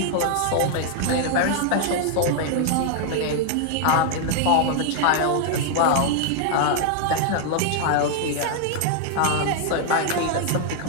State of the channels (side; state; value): both; different; correlation 0.00